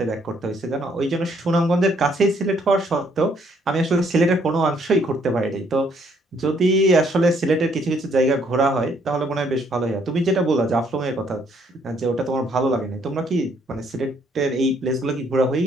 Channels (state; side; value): normal; both; correlation 0.67